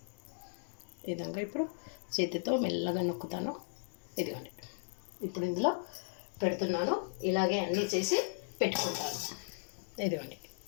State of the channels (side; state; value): right; silent; digital silence